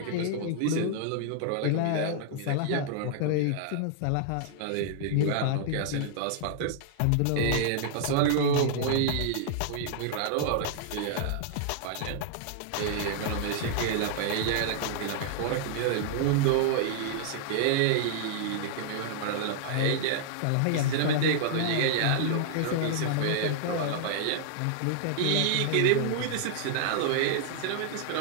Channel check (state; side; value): different; both; correlation -0.01